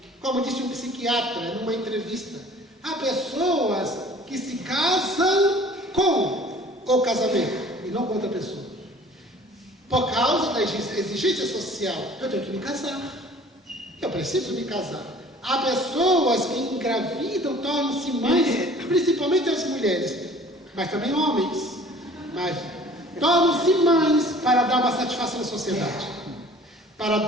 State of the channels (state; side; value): normal; both; correlation 0.50